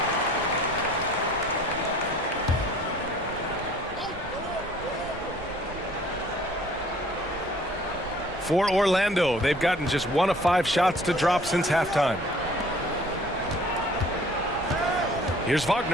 For Orlando, they've gotten just 1 of 5 shots to drop since halftime. Here's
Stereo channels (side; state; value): right; noise; rumble, 16 dB below the sound